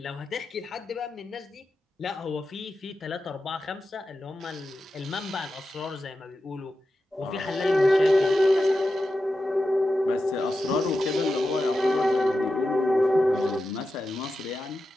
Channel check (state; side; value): normal; both; correlation 0.91